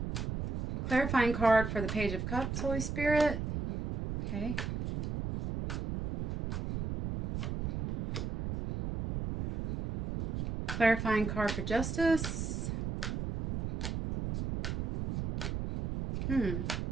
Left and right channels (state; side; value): noise; right; rumble, 3 dB below the sound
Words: Clarifying card for the Page of Cups, Holy Spirit. Okay. Clarifying card for Justice.